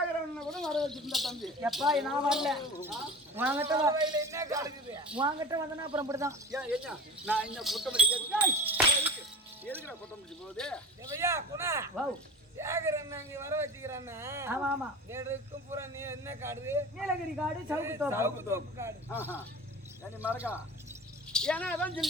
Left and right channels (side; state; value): both; normal; correlation 0.34